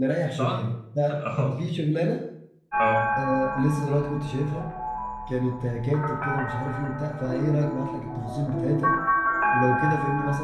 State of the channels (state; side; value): identical; both; correlation 1.00